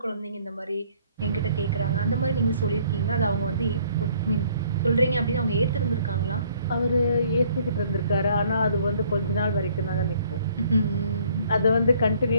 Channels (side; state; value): both; inverted; correlation -0.61